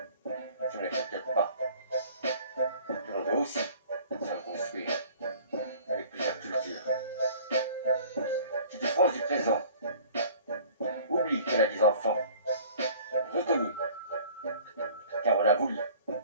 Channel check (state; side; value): inverted; both; correlation -0.49